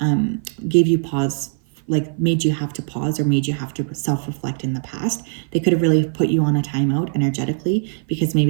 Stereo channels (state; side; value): silent; left; 56 dB below the other